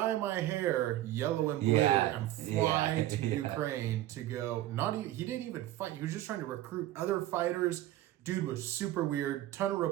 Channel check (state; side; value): quieter; left; 14.4 dB